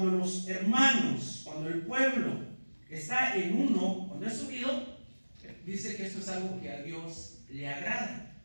los hermanos, cuando el pueblo está en uno, cuando es unido, dice que esto es algo que a Dios le agrada.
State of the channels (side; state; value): both; inverted; correlation -1.00